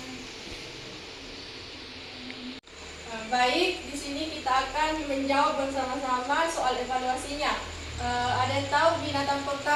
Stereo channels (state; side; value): identical; both; correlation 1.00